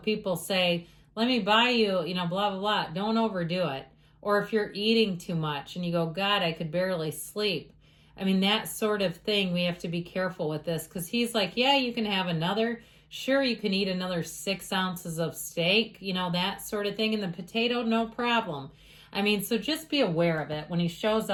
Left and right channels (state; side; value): identical; both; correlation 1.00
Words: say, let me buy you, blah, blah, blah. Don't overdo it. Or if you're eating too much and you go, God, I could barely sleep. I mean, that sort of thing, we have to be careful with this because he's like, yeah, you can have another. Sure, you can eat another 6 ounces of steak, that sort of thing. And the potato, no problem. I mean, so just be aware of it. When he shows